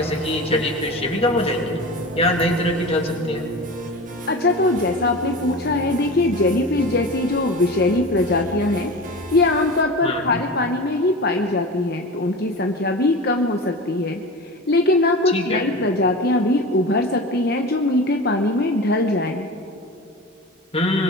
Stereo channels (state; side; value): normal; both; correlation 0.31